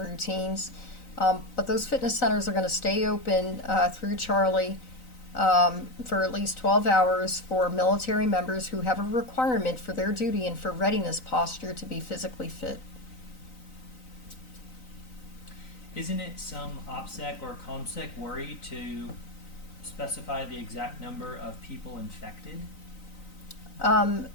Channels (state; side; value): late; right; 3.9 ms